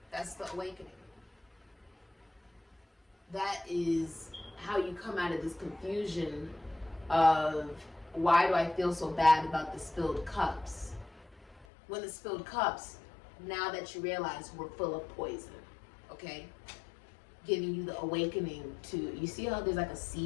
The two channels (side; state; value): right; drops out; at 11.7 s